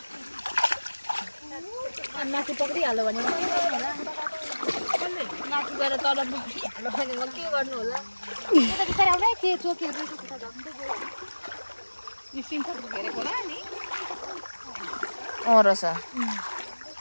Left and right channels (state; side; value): inverted; both; correlation -1.00